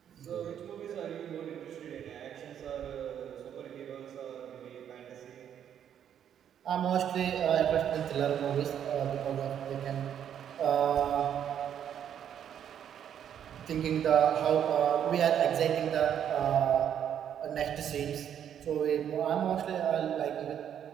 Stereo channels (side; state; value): left; quieter; 9.3 dB